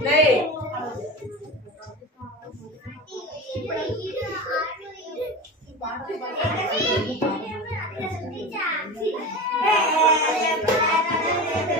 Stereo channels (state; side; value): normal; both; correlation 0.28